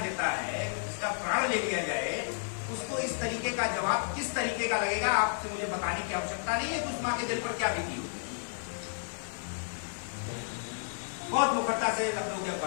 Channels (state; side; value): silent; right; digital silence